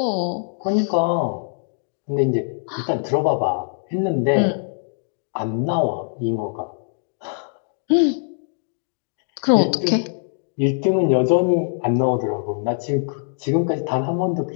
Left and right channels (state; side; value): silent; right; digital silence